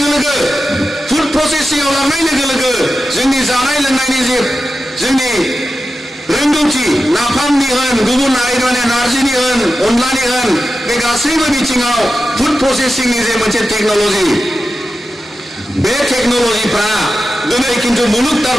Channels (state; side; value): normal; both; correlation 0.92